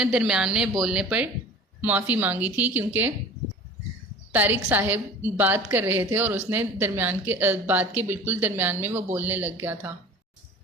درمیان میں بولنے پر معافی مانگی تھی، کیونکہ طارق صاحب بات کر رہے تھے اور اس نے بات کے بالکل درمیان میں وہ بولنے لگ گیا تھا۔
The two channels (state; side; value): normal; both; correlation 0.41